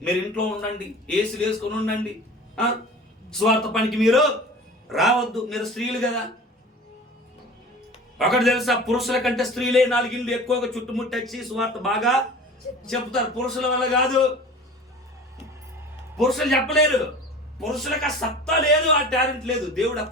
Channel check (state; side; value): normal; both; correlation 0.39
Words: మీరు ఇంట్లో ఉండండి, ఏసులు వేసుకొని ఉండండి, స్వార్థ పనికి మీరు రావద్దు, మీరు స్త్రీలు కదా. ఒకటి తెలుసా? పురుషుల కంటే స్త్రీలే 4 ఇళ్ళు ఎక్కువగా చుట్టుముట్టచ్చి స్వార్థ బాగా చెప్తారు. పురుషుల వల్ల కాదు. పురుషులు చెప్పలేరు. పురుషులకు ఆ సత్తా లేదు, ఆ టాలెంట్ లేదు. దేవుడు ఆ